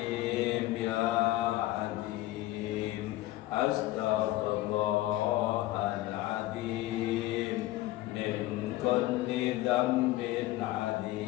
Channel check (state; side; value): quieter; right; 16.7 dB